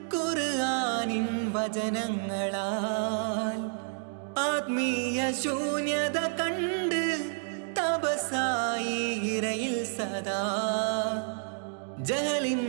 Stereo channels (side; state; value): left; silent; digital silence